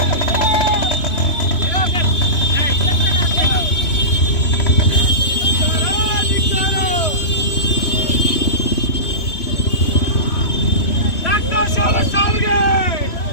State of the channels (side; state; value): right; late; 3.0 ms